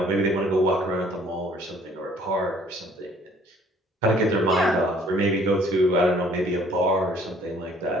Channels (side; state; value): both; normal; correlation 0.58